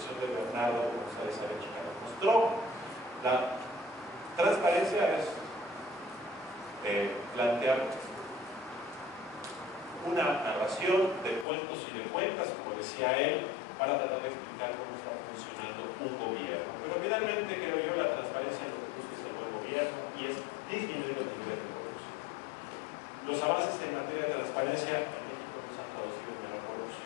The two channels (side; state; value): right; drops out; at 11.5 s